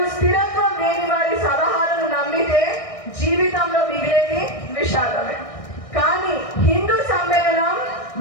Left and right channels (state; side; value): late; right; 1.6 ms